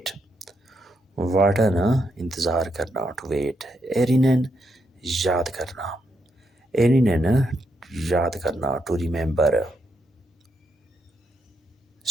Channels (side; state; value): both; normal; correlation 0.80